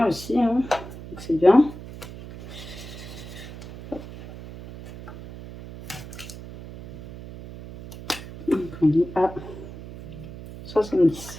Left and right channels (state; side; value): noise; right; hum, 13 dB below the sound